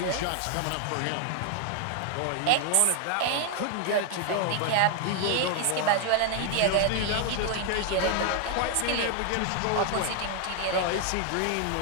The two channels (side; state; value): both; different; correlation 0.00